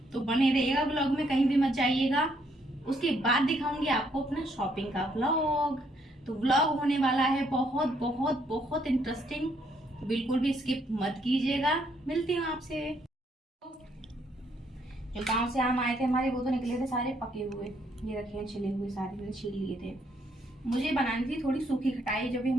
तो बने रहिएगा ब्लॉग में, कहीं भी मत जाइएगा। उसके बाद दिखाऊंगी आपको अपना शॉपिंग का व्लॉग। तो व्लॉग होने वाला है बहुत बहुत बहुत इंटरेस्टिंग, बिल्कुल भी स्किप मत कीजिएगा। मिलती हूँ आपसे। जो गांव से आम आए थे हमारे, वो तो निकले थे सारे पके हुए, ये रखे हैं छिले हुए, सारे मैंने छील लिए थे। मुझे बनानी थी थोड़ी सूखी खटाई, जो भी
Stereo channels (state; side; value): normal; both; correlation 0.71